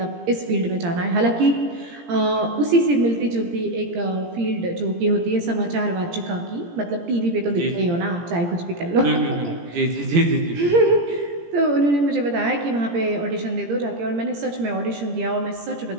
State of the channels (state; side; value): late; left; 17 ms